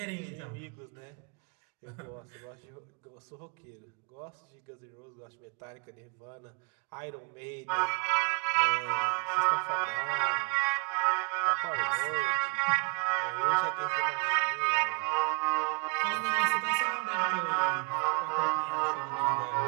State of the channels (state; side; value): quieter; left; 35.3 dB